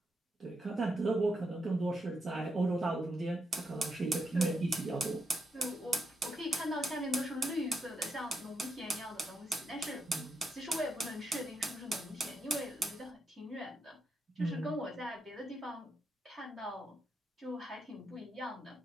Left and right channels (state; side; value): normal; both; correlation 0.82